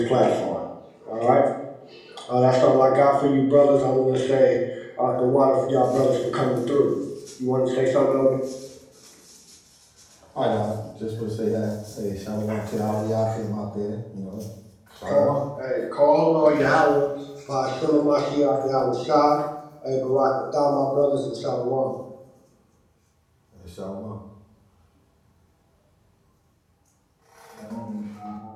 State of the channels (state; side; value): identical; both; correlation 1.00